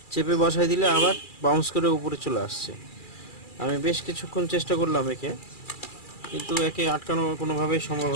চেপে বসাই দিলে আবার বাউন্স করে উপরে চলে আসছে। আমি বেশ কিছুক্ষণ চেষ্টা করলাম একে, কিন্তু একে আটকানো কোনোভাবেই সম্ভব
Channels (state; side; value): late; right; 2.4 ms